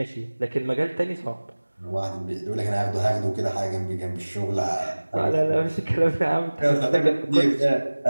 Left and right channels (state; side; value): inverted; both; correlation -1.00